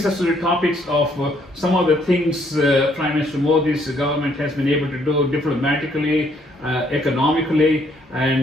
us to the topics of some of the things Prime Minister Modi's government has been able to do diplomatically, economically,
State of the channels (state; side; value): normal; both; correlation 0.68